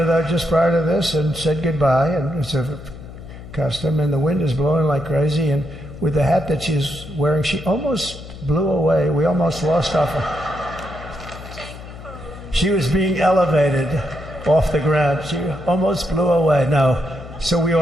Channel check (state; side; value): noise; left; hum, 14 dB below the sound